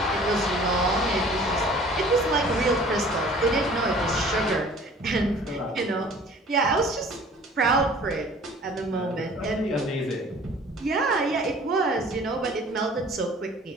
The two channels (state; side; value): normal; both; correlation 0.49